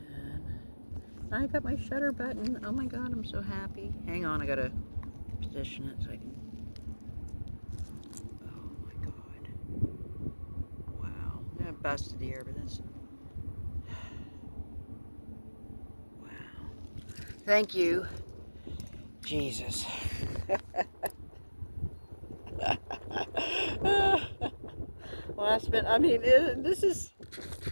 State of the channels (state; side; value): inverted; both; correlation -1.00